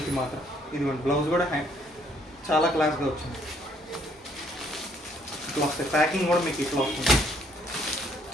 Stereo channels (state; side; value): normal; both; correlation 0.65